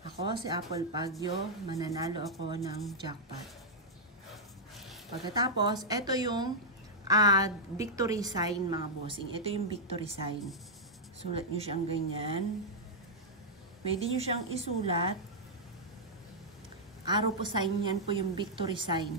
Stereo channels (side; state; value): both; normal; correlation -0.06